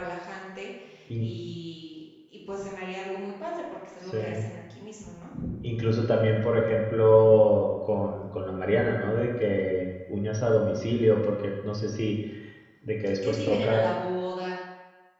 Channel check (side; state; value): both; identical; correlation 1.00